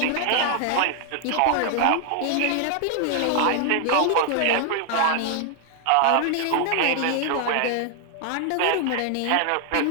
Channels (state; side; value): different; both; correlation 0.00